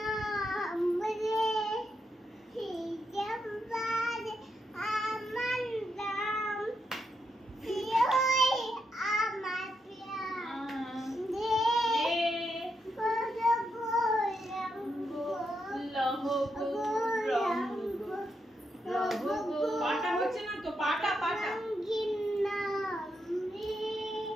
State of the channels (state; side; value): normal; both; correlation 0.82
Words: লহ গৌরঙ্গ রহ পাটা হচ্ছে না তো পাটা পাটা